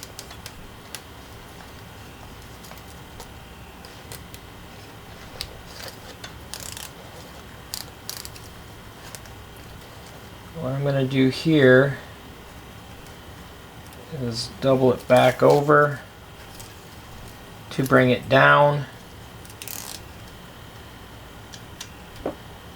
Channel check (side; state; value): both; identical; correlation 1.00